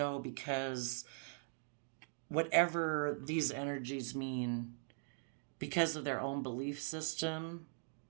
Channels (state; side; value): silent; left; digital silence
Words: because whatever these energies mean because of their own belief system